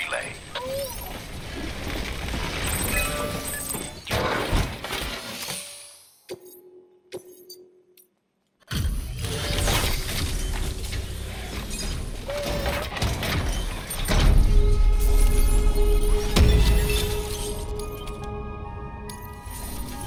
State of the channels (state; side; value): identical; both; correlation 1.00